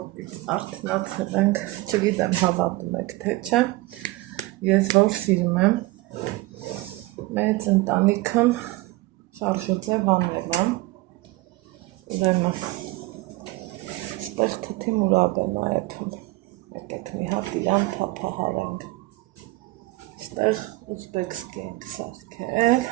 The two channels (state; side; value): quieter; left; 20.1 dB